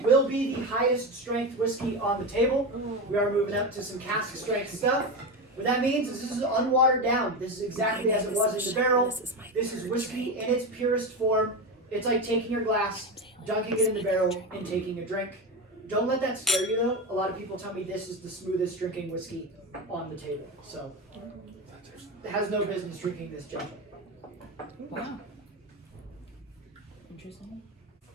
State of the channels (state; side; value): normal; both; correlation 0.18